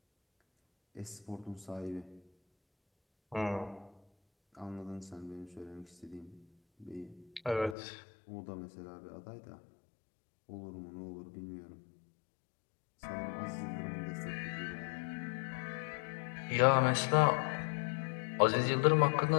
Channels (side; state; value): right; drops out; at 7.8 s